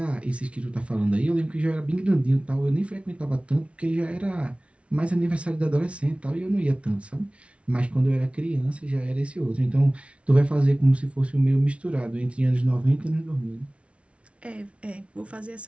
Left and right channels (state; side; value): late; left; 0.061 ms